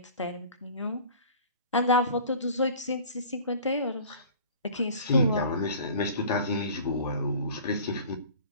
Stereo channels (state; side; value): inverted; both; correlation -0.44